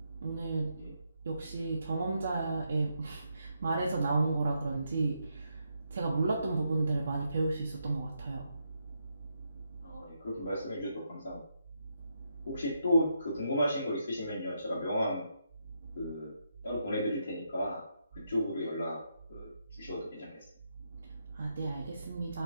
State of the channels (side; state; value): both; inverted; correlation -0.80